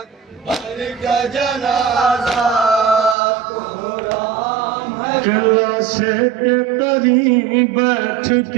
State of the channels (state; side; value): drops out; left; at 3.2 s